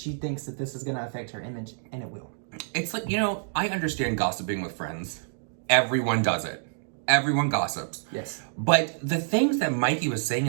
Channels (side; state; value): left; silent; digital silence